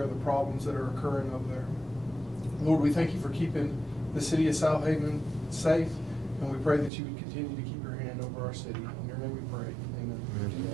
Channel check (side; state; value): left; drops out; at 6.9 s